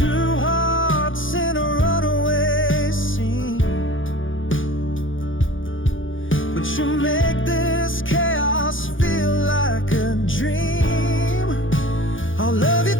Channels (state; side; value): late; right; 0.57 ms